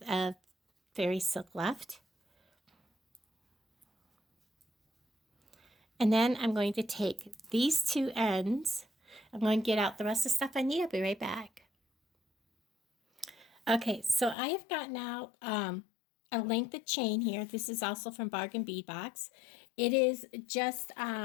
of fairy silk left. And then I'm going to take these two ends. I'm going to get out the rest of the stuff I need. I'll be right back. Okay, so I have gotten out a length of chain here. This is also from Bargain Bead Box. It is just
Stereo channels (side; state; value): right; drops out; at 14.4 s